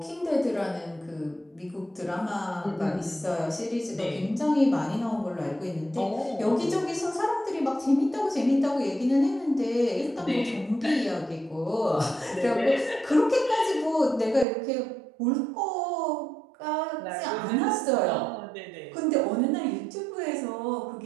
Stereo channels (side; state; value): left; drops out; at 14.5 s